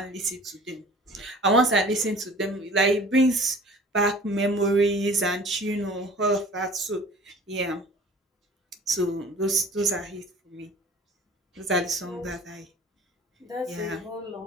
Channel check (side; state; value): both; normal; correlation 0.46